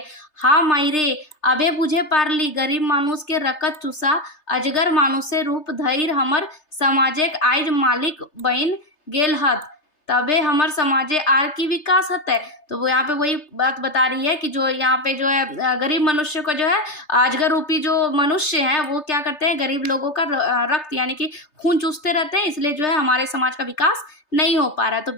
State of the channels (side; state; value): right; late; 3.3 ms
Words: हाँ मायरे अबे बुझे पारली गरीब मानुष के रकत चूसा अजगर मानुषे रूप धैर हमर समाजे आइज मालिक बन गेल हत, तबे हमर समाजे आर की विकास हते। तो वो यहाँ पे वही बात बता रही है कि जो यहाँ पे जो है गरीब मनुष्य को जो है अजगर रूपी जो मनुष्य है वो क्या करते हैं, गरीब लोगों का रक्त यानी कि खून चूसते रहते हैं, इसलिए जो है हमारे समाज का विकास नहीं हो पा रहा है। तो